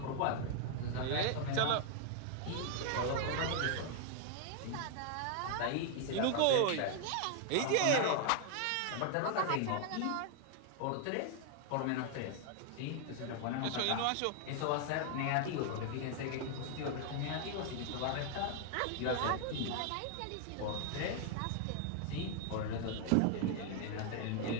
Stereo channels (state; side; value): different; both; correlation 0.00